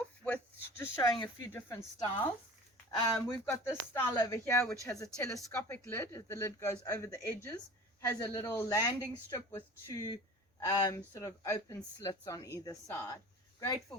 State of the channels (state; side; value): normal; both; correlation 0.40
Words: with just showing a few different styles. We've got this style over here, which has a telescopic lid. The lid goes over the edges, has a little landing strip with two sort of open slits on either side. Great for